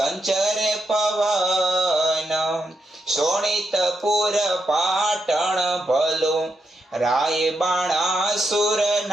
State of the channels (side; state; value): both; normal; correlation 0.83